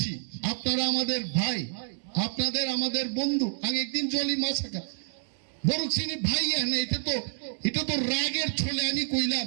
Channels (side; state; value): left; silent; digital silence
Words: আপনারা আমাদের ভাই আপনাদের আমাদের বন্ধু আমি একদিন জলি মাছাকা বড় চিনি ভাই না এটা তো রাগের ছলে আমি কইলাম